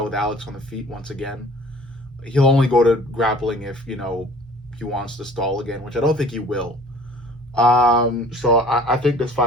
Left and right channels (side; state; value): both; normal; correlation 0.48